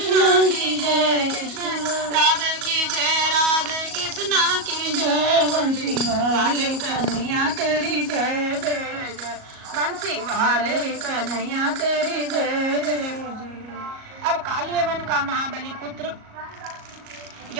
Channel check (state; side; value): late; left; 37 ms